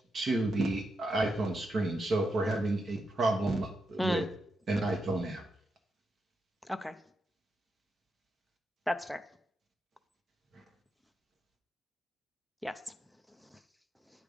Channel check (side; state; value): both; normal; correlation 0.85